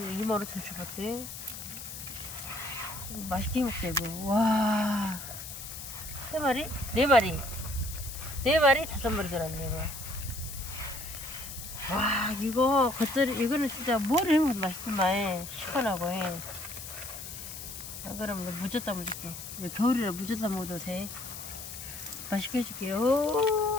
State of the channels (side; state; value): left; noise; hiss, 10 dB below the sound